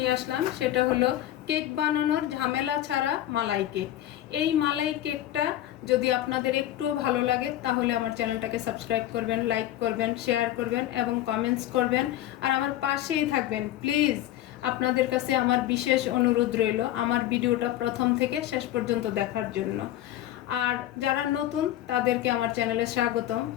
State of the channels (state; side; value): quieter; right; 13.2 dB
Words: আসলাম, সেটা হলো কেক বানানোর ঝামেলা ছাড়া মালাই কেক। এই মালাই কেকটা যদি আপনাদের একটুও ভালো লাগে তাহলে আমার চ্যানেলটাকে সাবস্ক্রাইব করবেন, লাইক করবেন, শেয়ার করবেন এবং কমেন্টস করবেন, আর আমার পাশেই থাকবেন প্লিজ। আপনাদের কাছে আমার বিশেষ অনুরোধ রইল আমার ভিডিওটা প্রথম থেকে শেষ পর্যন্ত দেখার জন্য। আর যারা নতুন তাদেরকে আমার চ্যানেলে স্বাগতম,